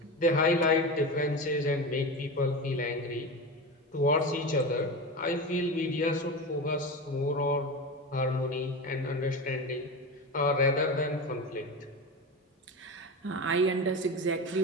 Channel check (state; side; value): normal; both; correlation 0.24